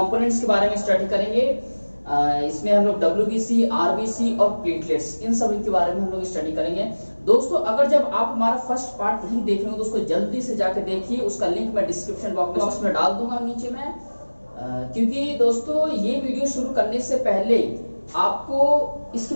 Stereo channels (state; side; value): inverted; both; correlation -1.00